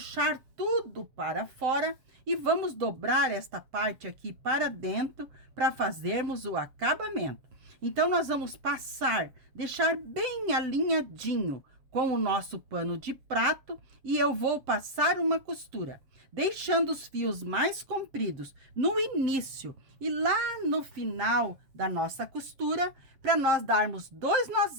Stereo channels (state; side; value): late; left; 7.4 ms